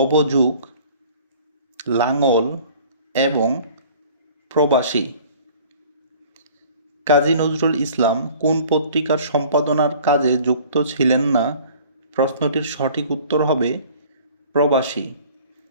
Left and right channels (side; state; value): both; inverted; correlation -0.50